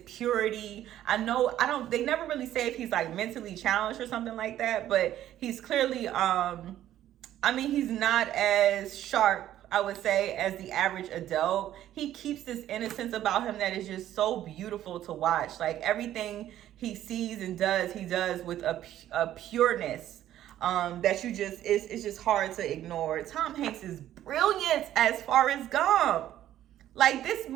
purity. They never really say if he's like mentally challenged or something like that, but he's clearly, he's not as sharp, I would say, as the average adult. He keeps this innocence about him that is just so beautiful to watch. Like everything he sees and does, he does with a pureness that it's just hard to ignore. Tom Hanks is brilliant as Forrest Gump. Like this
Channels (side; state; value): left; quieter; 12.4 dB